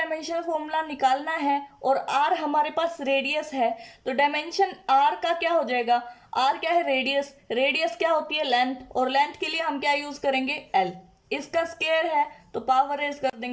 फॉर्मूला निकालना है और r हमारे पास रेडियस है, तो डायमेंशन r का क्या हो जाएगा, r क्या है, रेडियस, रेडियस क्या होती है, लेंथ, और लेंथ के लिए हम क्या यूज करेंगे, l। इसका स्क्वायर है तो पावर रेज कर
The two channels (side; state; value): both; identical; correlation 1.00